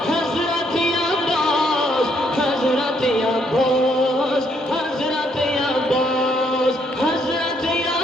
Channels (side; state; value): both; normal; correlation 0.71